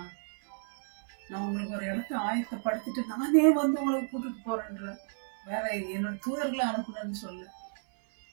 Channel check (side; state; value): left; silent; 56 dB below the other